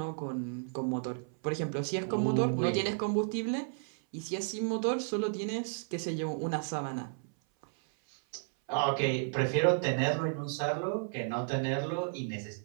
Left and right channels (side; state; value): left; silent; 56 dB below the other